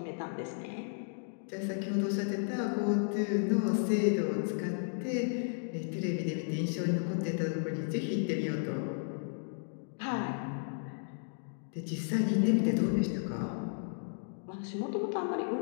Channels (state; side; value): silent; right; digital silence